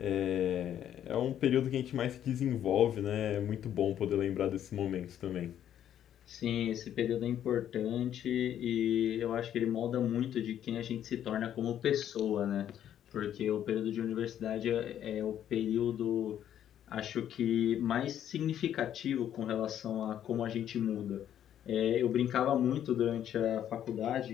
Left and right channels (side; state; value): right; quieter; 10.4 dB